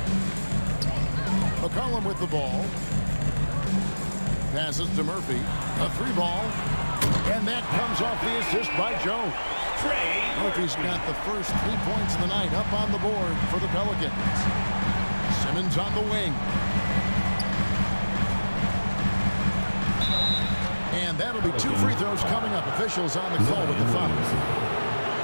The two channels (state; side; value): inverted; both; correlation -1.00